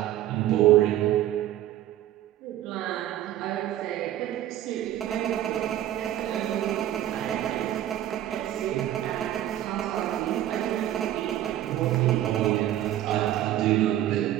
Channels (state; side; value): quieter; left; 12.8 dB